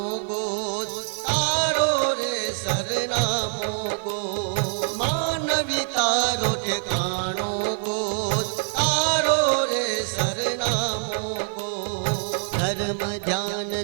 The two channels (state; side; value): silent; left; digital silence